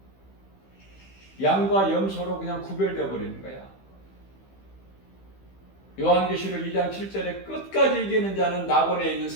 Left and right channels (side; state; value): right; late; 15 ms